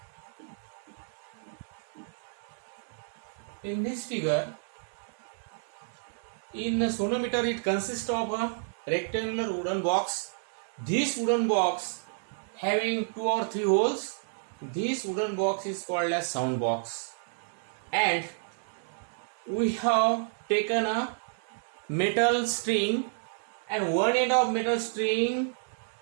In this figure, in the sonometer, it consists of a rectangular wooden box. This wooden box having 2 or 3 holes. This wooden box is called as sound box. And we have taken a metal string, and one end of metal string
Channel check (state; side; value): silent; left; digital silence